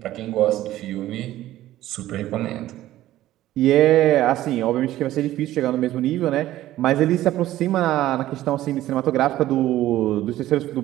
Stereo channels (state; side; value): quieter; left; 14.5 dB